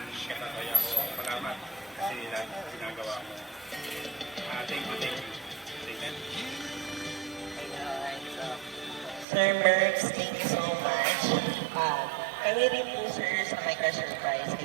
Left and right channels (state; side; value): drops out; left; at 9.2 s